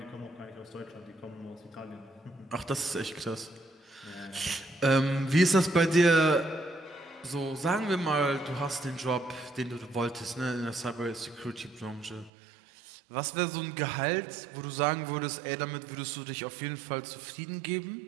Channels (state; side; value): drops out; left; at 12.3 s